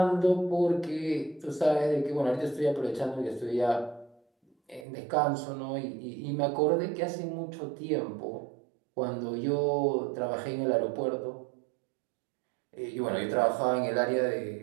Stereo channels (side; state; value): left; drops out; at 4.9 s